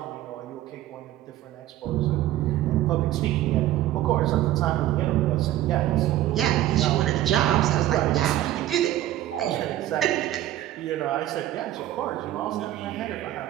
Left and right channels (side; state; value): left; quieter; 13.8 dB